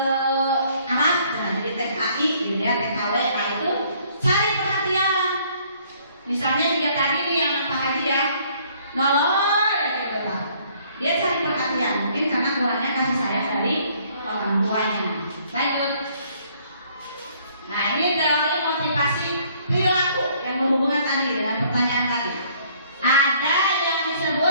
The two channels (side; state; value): both; inverted; correlation -0.62